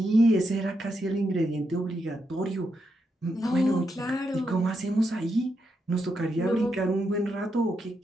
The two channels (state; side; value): normal; both; correlation 0.82